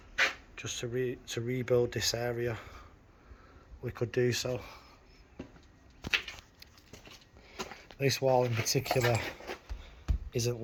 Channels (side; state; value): both; identical; correlation 1.00